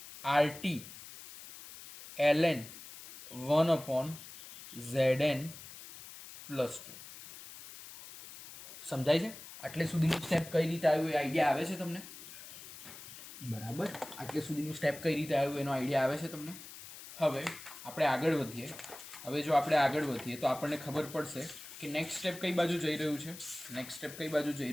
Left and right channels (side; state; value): left; noise; hiss, 14 dB below the sound